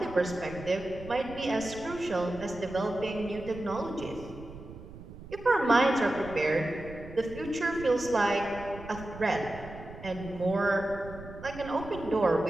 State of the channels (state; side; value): noise; right; rumble, 15 dB below the sound